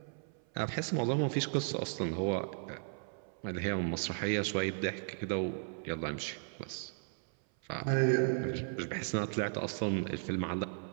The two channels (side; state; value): left; silent; 54 dB below the other